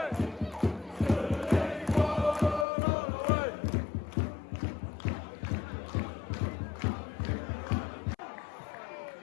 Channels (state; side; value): drops out; right; at 2.7 s